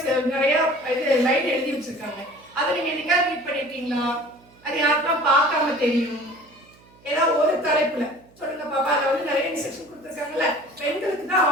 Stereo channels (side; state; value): right; noise; hum, 28 dB below the sound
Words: நிறைய இது லைன் எழுதி வச்சிருக்காங்க. அதை நீங்க என்னைக்காவது ரீட் பண்ணிருக்கீங்களா? அது யாருக்கெல்லாம் பார்க்காம தெரியும்? ஏதாவது ஒரு தலைப்புல சொல்லுங்க பாப்பா. அதுல வந்து நிறைய இன்ஸ்ட்ரக்ஷன் கொடுத்துருக்காங்கல்ல, பெண்களுக்கு தான்